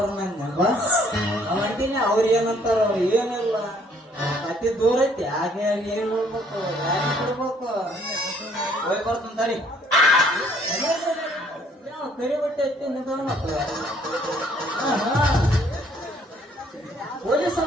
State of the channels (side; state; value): both; normal; correlation 0.63